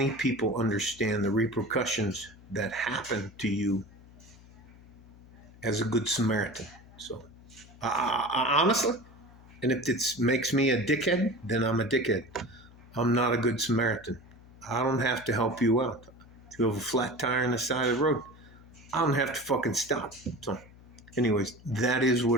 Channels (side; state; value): left; noise; hum, 22 dB below the sound